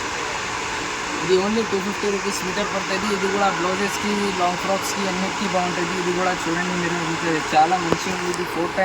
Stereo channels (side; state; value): both; identical; correlation 1.00